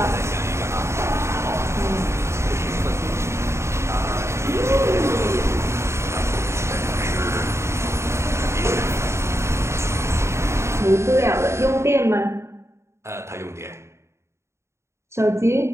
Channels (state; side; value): late; left; 0.13 ms